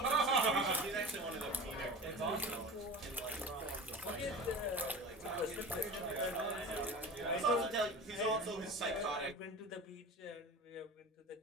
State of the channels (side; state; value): both; normal; correlation 0.34